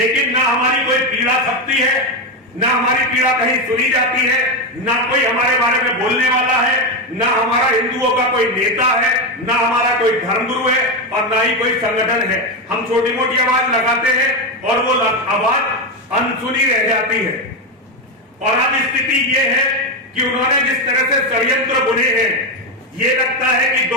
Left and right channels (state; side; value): normal; both; correlation 0.11